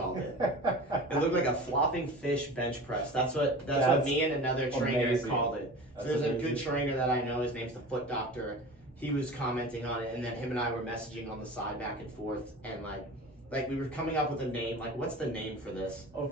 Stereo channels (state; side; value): normal; both; correlation 0.36